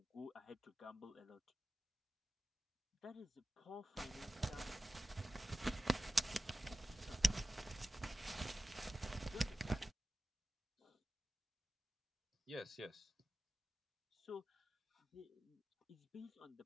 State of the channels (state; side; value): normal; both; correlation 0.94